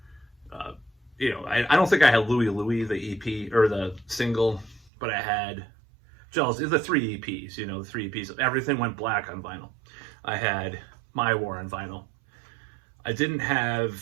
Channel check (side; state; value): left; drops out; at 4.9 s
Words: You know, I don't think I had Louie Louie, the EP or the single, but I had Jealous, the 3 EPs, you know, the 3 EPs. Everything Went Black on vinyl. I had My War on vinyl. I didn't have